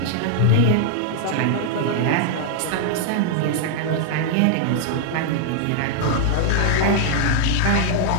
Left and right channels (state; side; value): different; both; correlation -0.01